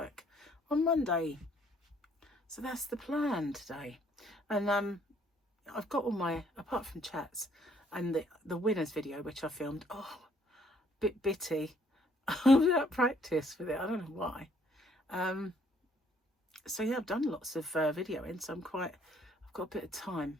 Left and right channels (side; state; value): both; normal; correlation 0.65